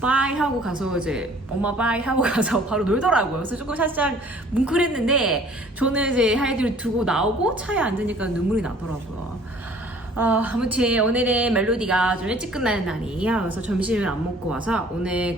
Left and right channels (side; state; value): both; normal; correlation 0.53